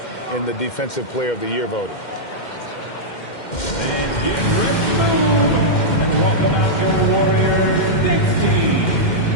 in the Defensive Player of the Year voting. And get ready to move. And welcome out your Warriors next team.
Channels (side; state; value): right; late; 2.1 ms